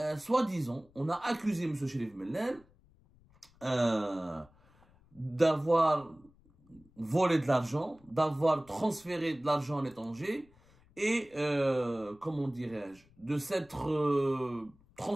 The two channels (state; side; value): noise; left; rumble, 29 dB below the sound